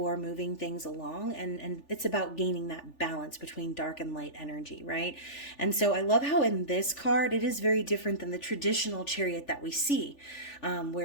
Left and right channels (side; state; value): right; late; 3.4 ms